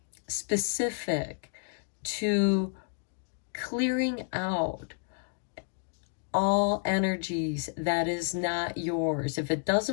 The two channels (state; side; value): silent; right; digital silence